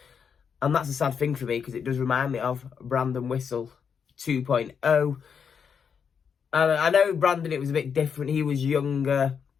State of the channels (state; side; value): quieter; right; 6.8 dB